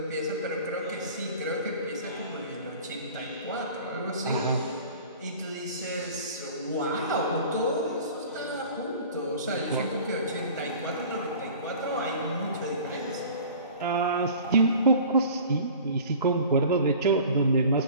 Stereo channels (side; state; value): both; inverted; correlation -0.43